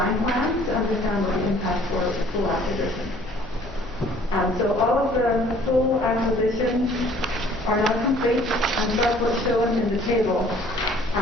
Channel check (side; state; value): both; normal; correlation 0.55